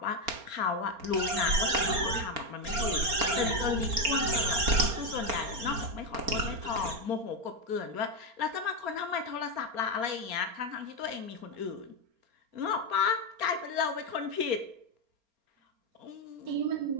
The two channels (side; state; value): left; late; 4.3 ms